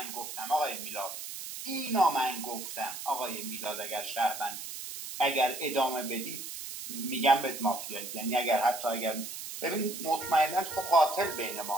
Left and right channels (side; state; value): right; noise; hiss, 8 dB below the sound